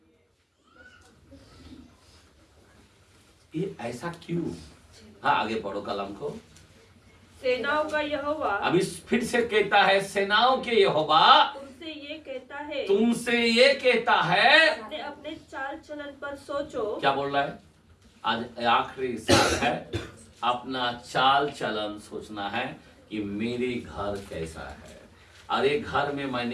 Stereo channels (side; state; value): both; identical; correlation 1.00